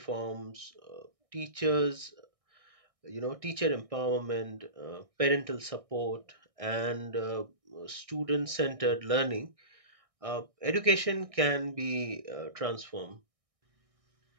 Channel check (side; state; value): left; late; 1.6 ms